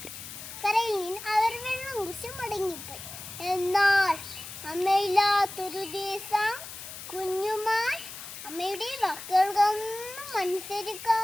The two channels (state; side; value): noise; left; hiss, 12 dB below the sound